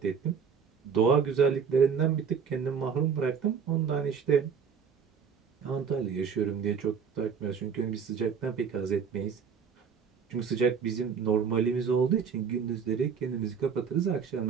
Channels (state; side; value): quieter; left; 6.5 dB